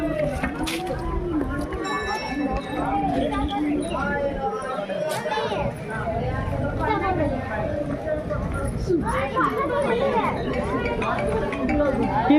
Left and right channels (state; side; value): identical; both; correlation 1.00